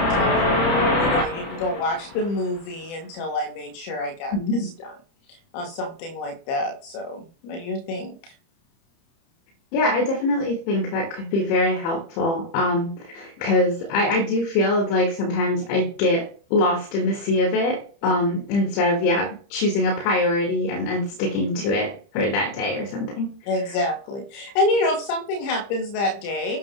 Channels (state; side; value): late; right; 30 ms